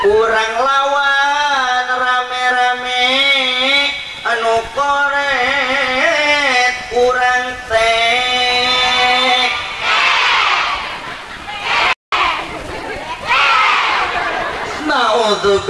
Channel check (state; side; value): identical; both; correlation 1.00